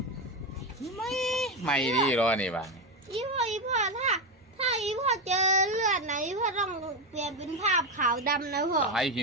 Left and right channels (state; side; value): normal; both; correlation 0.12